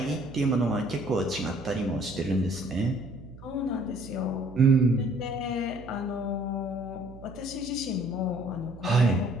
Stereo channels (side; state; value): right; noise; hum, 17 dB below the sound